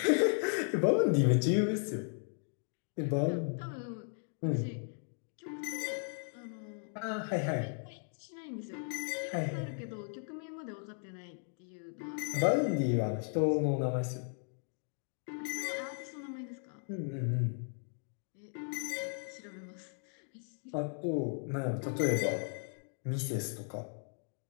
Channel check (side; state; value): right; silent; 54 dB below the other